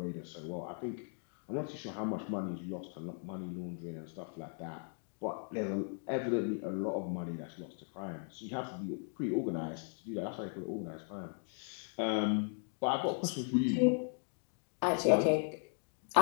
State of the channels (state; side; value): silent; right; 53 dB below the other